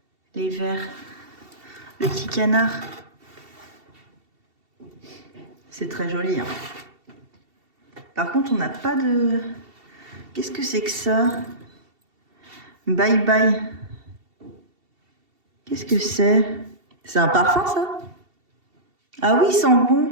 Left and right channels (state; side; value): late; left; 2.7 ms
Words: Les verres. Le petit canard. C'est très joli. Hein. Par contre, on n'a pas de... Qu'est-ce que c'est que ça? Bye bye. Qu'est-ce que c'est? C'est un parfum, ça? Ah oui, il sent bon.